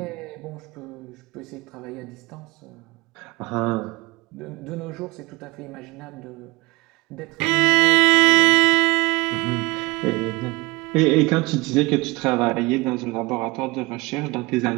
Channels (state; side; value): quieter; left; 23.7 dB